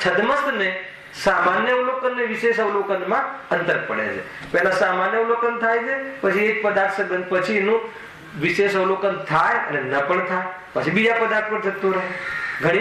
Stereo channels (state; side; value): identical; both; correlation 1.00